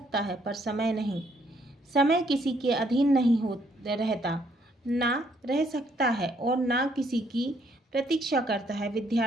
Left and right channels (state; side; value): normal; both; correlation 0.69